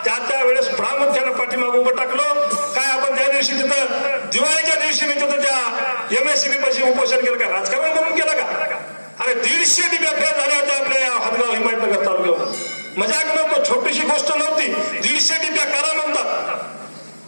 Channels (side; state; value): both; inverted; correlation -1.00